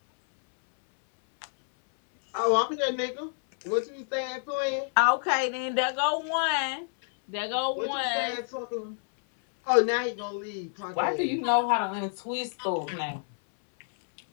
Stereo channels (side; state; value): right; silent; 59 dB below the other